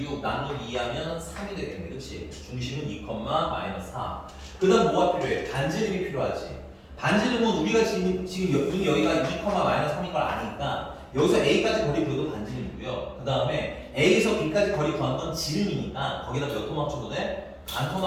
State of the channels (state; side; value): identical; both; correlation 1.00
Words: 나누기 2 하면 3이 되겠네. 그치? 중심은 2, 마이너스 4. 그 다음 뭐가 필요해? 반지름이 필요하지. 반지름은 우리가 지금 여기가 2, 마이너스 3인 걸 아니까 여기서 A까지 거리 구해도 반지름이고요. 그 다음에 A에서 B까지 거리 구하는 건 지름이니까 거기다 몇 토막 쳐도 돼? 반